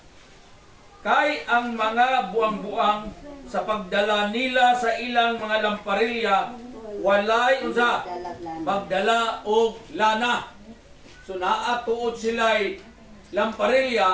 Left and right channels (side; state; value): both; identical; correlation 1.00